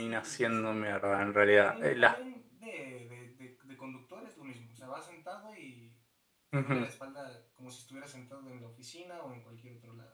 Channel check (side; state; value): both; identical; correlation 1.00